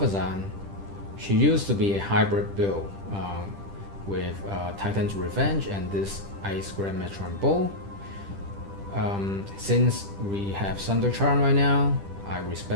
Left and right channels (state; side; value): late; left; 10 ms